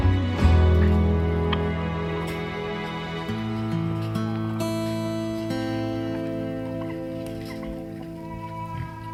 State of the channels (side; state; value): both; identical; correlation 1.00